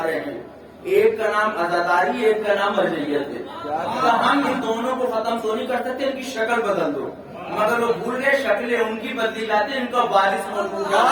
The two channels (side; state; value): both; identical; correlation 1.00